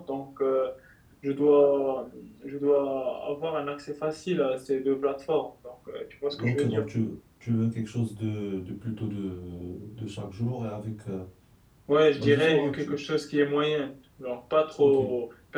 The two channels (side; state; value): both; identical; correlation 1.00